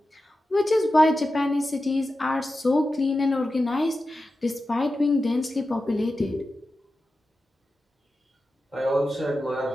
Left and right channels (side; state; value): both; normal; correlation 0.92